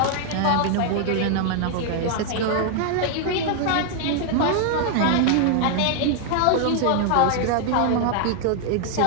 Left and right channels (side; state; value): both; different; correlation 0.00